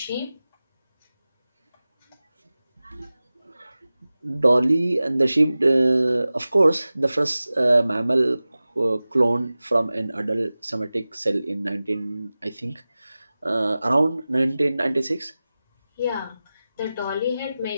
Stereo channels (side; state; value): both; inverted; correlation -0.97